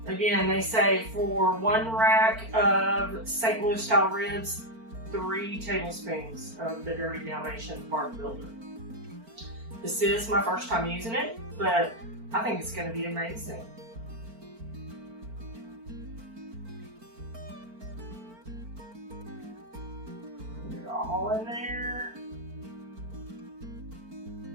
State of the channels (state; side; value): late; left; 4.4 ms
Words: Again, they say for 1 rack of St. Louis style ribs, 3 tablespoons of the Dirty Dalmatian bark builder. This is my first time using it, but I think it's going to be amazing. Put it all in there.